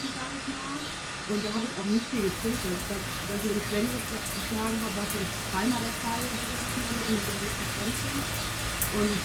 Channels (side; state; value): both; identical; correlation 1.00